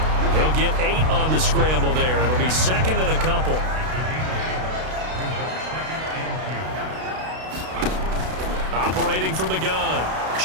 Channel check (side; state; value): left; late; 32 ms